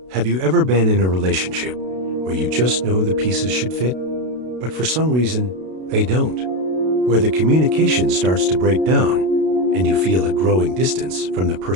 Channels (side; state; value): left; late; 32 ms